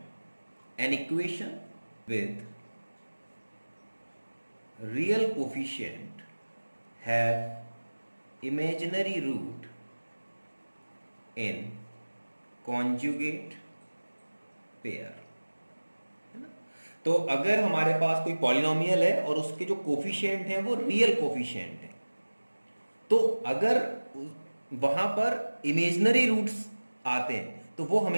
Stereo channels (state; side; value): inverted; both; correlation -1.00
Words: an equation with real coefficient have imaginary root in conjugate pair, है ना। तो अगर हमारे पास कोई पॉलिनोमियल है और उसके जो कोफिशिएंट हैं वो रियल कोफिशिएंट है, तो अगर वहां पर इमेजिनरी रूट्स आते हैं तो वो